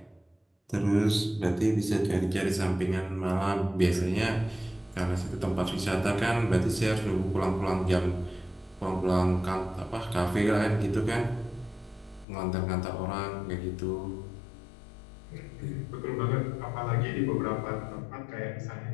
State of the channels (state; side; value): drops out; right; at 12.2 s